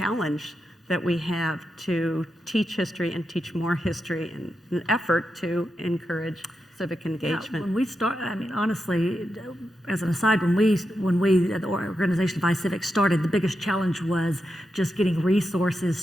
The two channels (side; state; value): both; normal; correlation 0.87